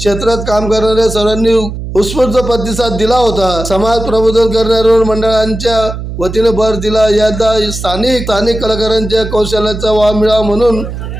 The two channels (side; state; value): right; noise; hum, 8 dB below the sound